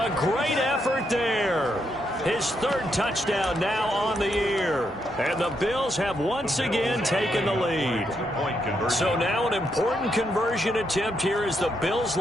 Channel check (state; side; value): normal; both; correlation 0.79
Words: great effort there. His 3rd touchdown now on the year. And the Bills have once again taken the lead. So now an important conversion attempt here as the Bills